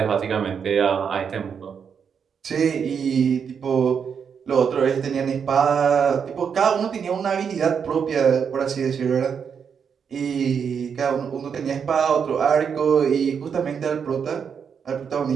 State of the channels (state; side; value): quieter; left; 6.9 dB